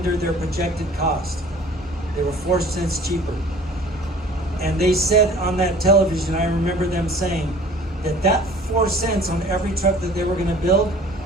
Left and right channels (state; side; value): normal; both; correlation 0.48